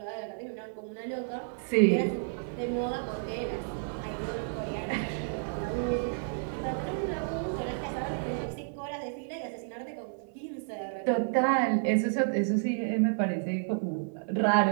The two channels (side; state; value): left; silent; 57 dB below the other